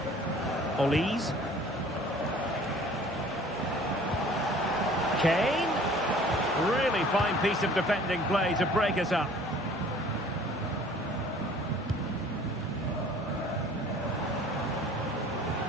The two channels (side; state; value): both; normal; correlation 0.50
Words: Olise. Kane. Really fine piece of defending play to break us up.